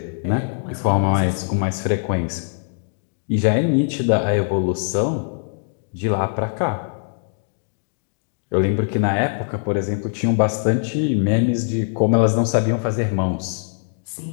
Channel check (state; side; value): silent; right; digital silence